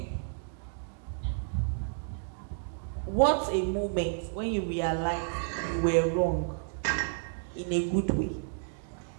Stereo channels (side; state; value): left; silent; digital silence